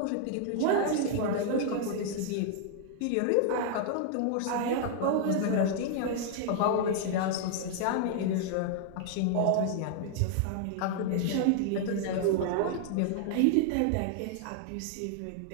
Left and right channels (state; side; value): different; both; correlation -0.01